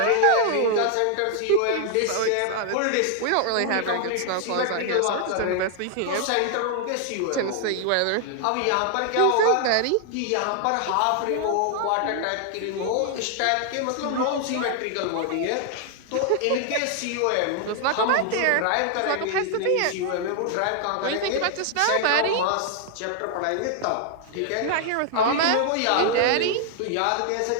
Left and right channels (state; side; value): different; both; correlation 0.00